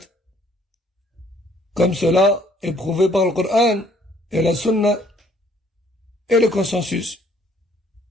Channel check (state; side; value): normal; both; correlation 0.62